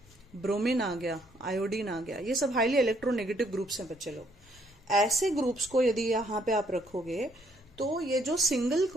ब्रोमीन आ गया, आयोडीन आ गया। ये सब हाईली इलेक्ट्रोनेगेटिव ग्रुप्स हैं बच्चे लोग। ऐसे ग्रुप्स को यदि यहाँ पे आप रखोगे तो ये जो सिंगल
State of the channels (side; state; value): left; noise; rumble, 27 dB below the sound